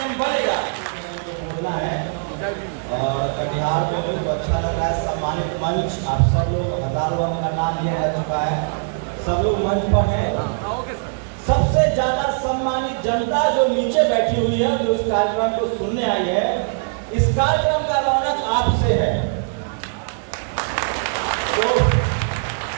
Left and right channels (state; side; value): silent; left; 62 dB below the other